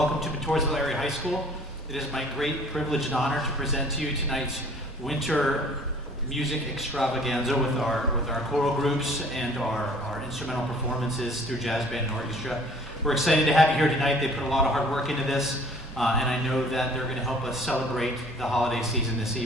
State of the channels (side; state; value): both; normal; correlation 0.52